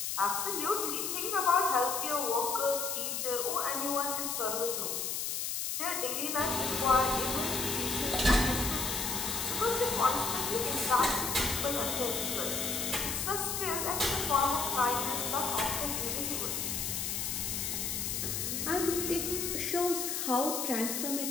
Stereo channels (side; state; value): left; noise; hiss, 1 dB below the sound